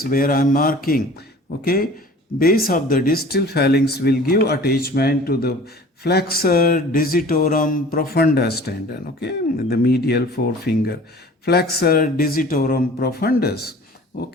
where I am marking. Okay, base of the distal phalanx will give attachment to the flexor digitorum profundus tendon. Okay, the medial forefinger, flexor digitorum profundus.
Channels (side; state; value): both; normal; correlation 0.45